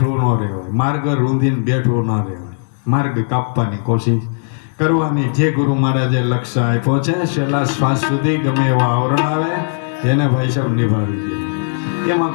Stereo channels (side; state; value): right; silent; digital silence